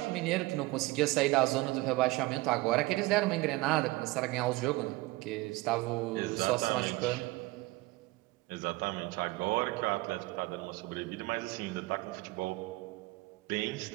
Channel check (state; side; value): quieter; left; 21.3 dB